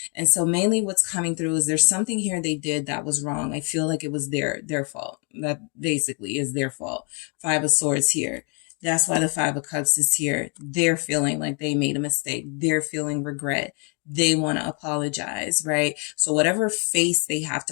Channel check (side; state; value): right; quieter; 36.3 dB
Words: And so mainly what's coming through is there's something here they did that was wrong. I feel like it was their fault. That basically is their fault. Five of Swords here. That's why the Five of Cups is here. They're feeling like they made a mistake. They're feeling regret. They want to apologize, right? So whatever face they have